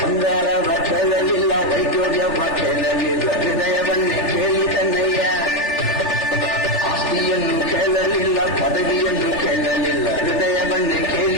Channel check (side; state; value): right; late; 3.4 ms